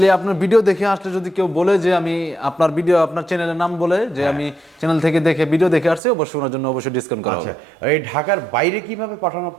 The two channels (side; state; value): left; drops out; at 6.0 s